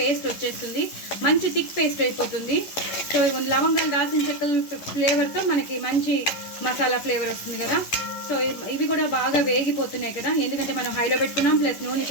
వచ్చేస్తుంది, మంచి థిక్ పేస్ట్ అయిపోతుంది. సో లవంగాలు, దాల్చిన చెక్కల ఫ్లేవర్తో మనకి మంచి మసాలా ఫ్లేవర్ వస్తుంది కదా. సో ఇవి కూడా బాగా వేగిపోతున్నాయి కదా, ఎందుకంటే మనం హైలో పెట్టుకున్నాం. ప్లస్ నూనె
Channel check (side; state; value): right; late; 11 ms